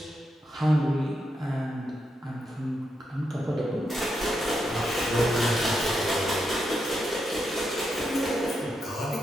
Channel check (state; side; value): normal; both; correlation 0.83